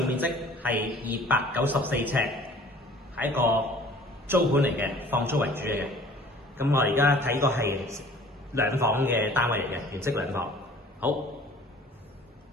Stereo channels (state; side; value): normal; both; correlation 0.50